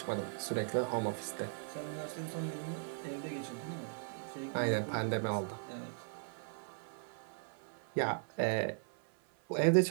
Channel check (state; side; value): silent; left; 52 dB below the other